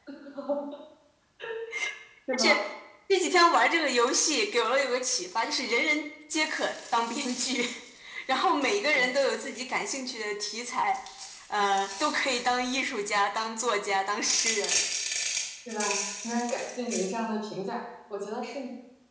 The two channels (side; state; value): both; identical; correlation 1.00